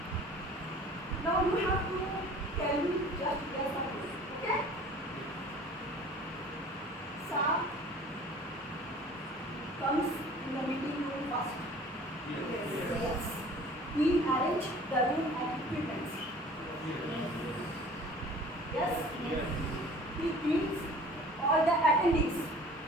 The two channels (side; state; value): both; normal; correlation 0.47